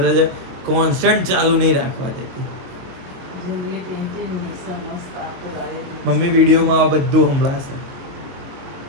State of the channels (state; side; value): late; left; 22 ms